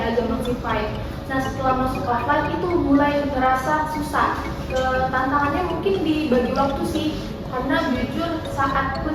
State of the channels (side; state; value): both; identical; correlation 1.00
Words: masih fine. Nah setelah masuk offline itu mulai terasa susah. Tantangannya mungkin di bagi waktu sih, karena jujur saat